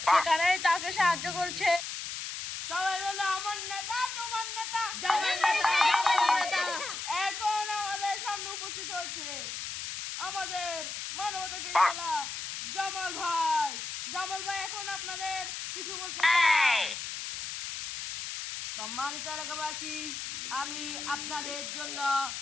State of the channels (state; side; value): noise; left; hiss, 6 dB below the sound